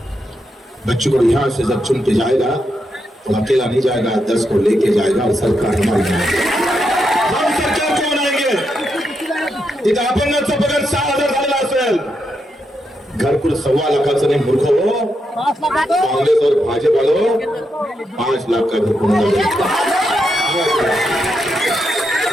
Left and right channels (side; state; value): both; normal; correlation 0.83